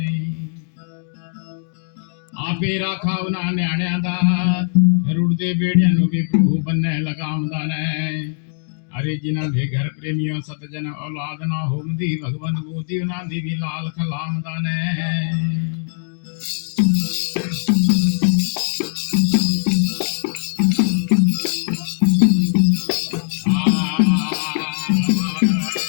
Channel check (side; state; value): right; silent; digital silence